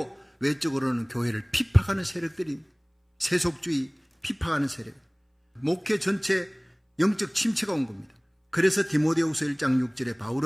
외적으로는 교회를 핍박하는 세력들이 세속주의 핍박하는 세력, 목회 전체 영적 침체가 온 겁니다. 그래서 디모데후서 1장 6절에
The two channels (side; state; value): both; identical; correlation 1.00